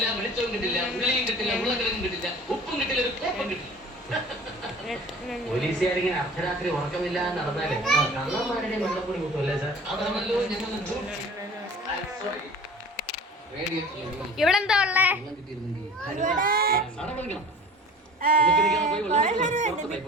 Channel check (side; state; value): both; normal; correlation 0.43